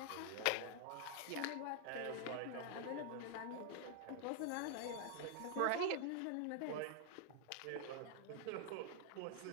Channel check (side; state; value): both; different; correlation 0.00